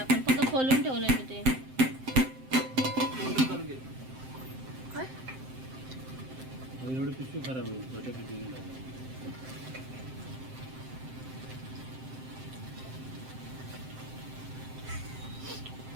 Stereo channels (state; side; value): late; left; 7.7 ms